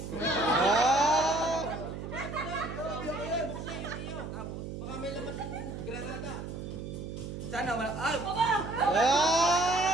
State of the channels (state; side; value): noise; right; hum, 8 dB below the sound